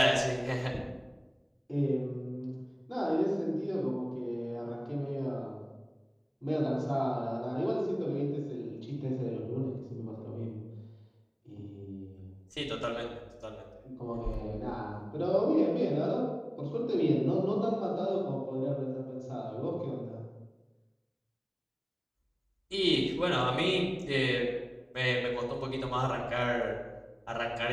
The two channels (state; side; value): identical; both; correlation 1.00